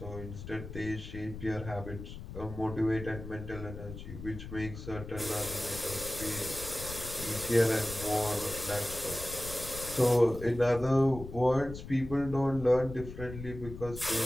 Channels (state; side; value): noise; left; rumble, 11 dB below the sound